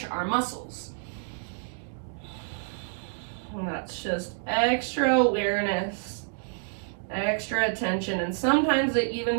our muscles. And that's just extra awareness, extra attention. And sometimes it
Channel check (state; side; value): silent; left; digital silence